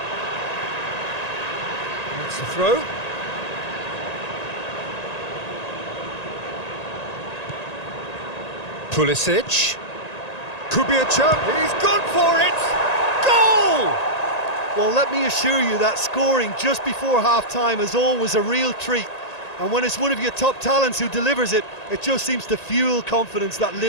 That's the throw. Pulisic. Could be a chance. He's gone for it! Goal! Well, let me assure you that scoring just before half-time is always a real treat. And when it's one of your top talents who delivers it, it just seems to fuel confidence that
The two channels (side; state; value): right; late; 1.9 ms